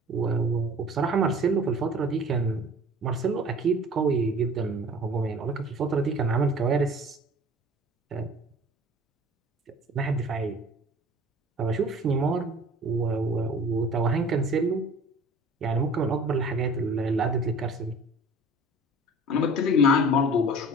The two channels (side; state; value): both; normal; correlation 0.44